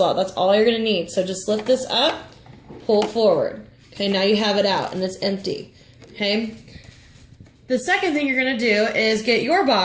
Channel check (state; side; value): identical; both; correlation 1.00